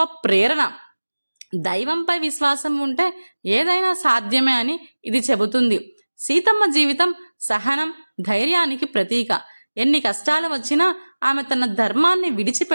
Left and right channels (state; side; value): inverted; both; correlation -1.00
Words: ప్రేరణ. దైవంపై విశ్వాసం ఉంటే ఏదైనా సాధ్యమే అని ఇది చెబుతుంది. సీతమ్మ జీవితం సహనం, ధైర్యానికి ప్రతీక. ఎన్ని కష్టాలు వచ్చినా ఆమె తన ధర్మాన్ని